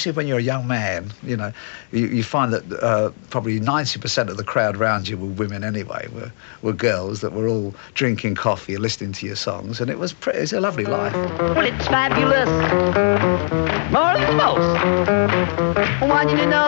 when you're a young man. You know, you find that probably 90% of the crowd around you were women anyway, were girls that were all drinking coffee and listening to your songs, and it was a lovely life. Well, it's fabulous, more than most. I want you to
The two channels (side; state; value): right; silent; 66 dB below the other